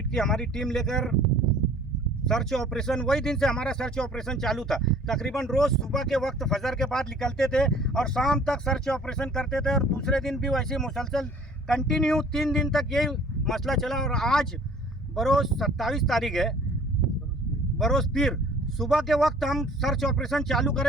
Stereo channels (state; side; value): normal; both; correlation 0.52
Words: की हमारी टीम लेकर सर्च ऑपरेशन, वही दिन से हमारा सर्च ऑपरेशन चालू था। तकरीबन रोज़ सुबह के वक्त फजर के बाद निकलते थे और शाम तक सर्च ऑपरेशन करते थे, और दूसरे दिन भी वैसे मुसलसल कंटिन्यू 3 दिन तक यही मसला चला। और आज बरोज़ 27 तारीख है, बरोज़ पीर, सुबह के वक्त हम सर्च ऑपरेशन चालू